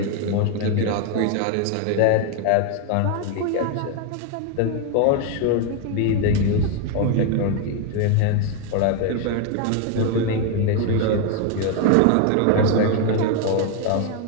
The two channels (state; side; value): different; both; correlation 0.01